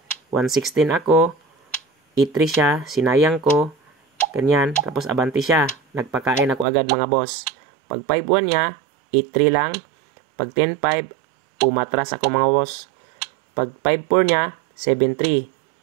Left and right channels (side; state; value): left; drops out; at 6.7 s